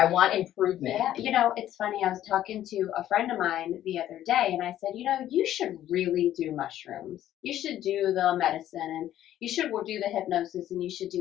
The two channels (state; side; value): quieter; right; 12.3 dB